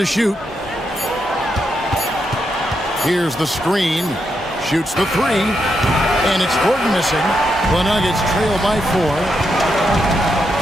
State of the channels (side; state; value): both; normal; correlation 0.82